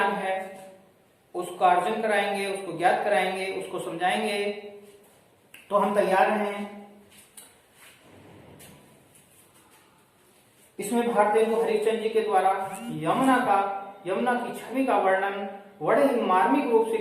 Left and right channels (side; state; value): both; identical; correlation 1.00